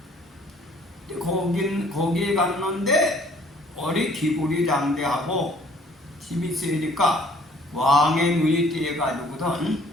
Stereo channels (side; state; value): both; normal; correlation 0.58